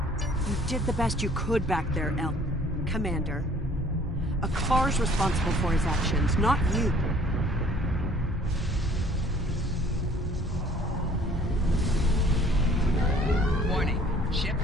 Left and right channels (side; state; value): both; normal; correlation 0.55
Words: You did the best you could back there, Commander. A car's responsible for his actions, not you. Warning, ship